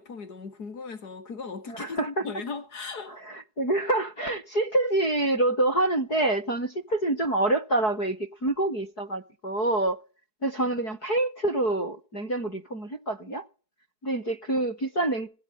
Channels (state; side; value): late; right; 4.7 ms